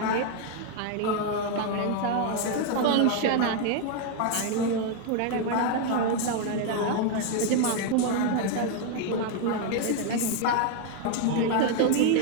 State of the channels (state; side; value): different; both; correlation 0.01